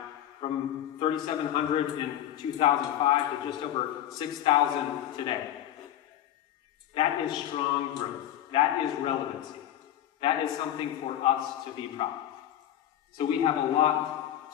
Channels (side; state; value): right; quieter; 11.8 dB